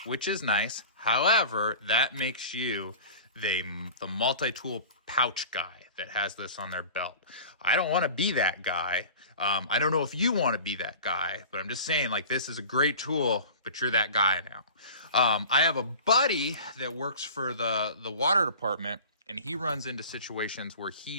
which is nice. However, that makes you the multi-tool pouch guy that has this on their belt. I don't want to be that guy. I don't know if you want to be that guy, but I'm just saying, like, this is a great tool, but you're that guy now. I have a buddy that works for the water department, and he runs into situations where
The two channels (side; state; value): both; inverted; correlation -0.39